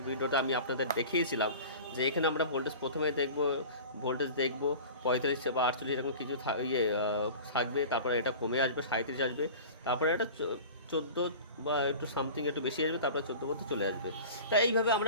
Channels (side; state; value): both; inverted; correlation -0.37